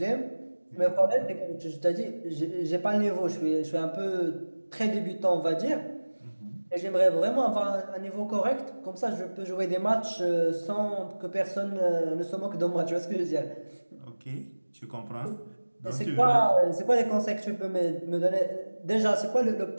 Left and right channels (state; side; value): inverted; both; correlation -1.00